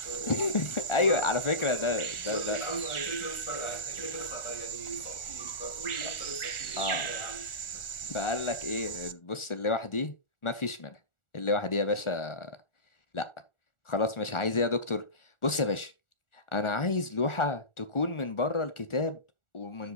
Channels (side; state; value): right; late; 1.4 ms